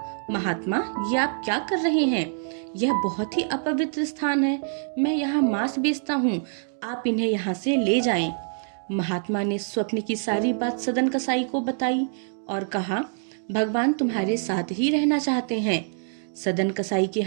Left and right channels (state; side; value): silent; left; digital silence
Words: महात्मा ये आप क्या कर रहे हैं? यह बहुत ही अपवित्र स्थान है, मैं यहाँ मांस बेचता हूँ, आप इन्हें यहाँ से ले जाएं। महात्मा ने स्वप्न की सारी बात सदन कसाई को बताई और कहा, भगवान तुम्हारे साथ ही रहना चाहते हैं। सदन कसाई के